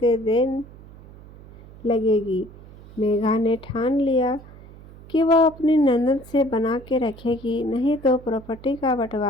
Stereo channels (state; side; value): noise; right; hum, 20 dB below the sound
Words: देर लगेगी। मेघा ने ठान लिया कि वह अपनी ननद से बना के रखेगी, नहीं तो प्रॉपर्टी का